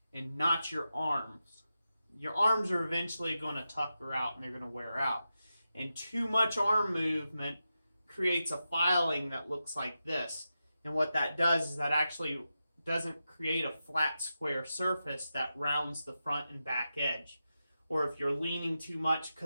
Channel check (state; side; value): inverted; both; correlation -0.90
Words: and not your arms. Your arms are eventually going to tucker out and they're going to wear out. And too much arm movement creates a filing that looks like this. And what that does is that actually doesn't create a flat square surface that rounds the front and back edge. Or if you're leaning too much